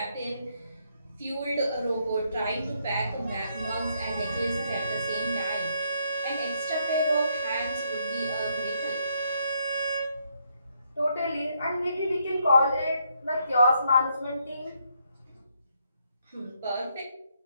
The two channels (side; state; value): both; inverted; correlation -0.74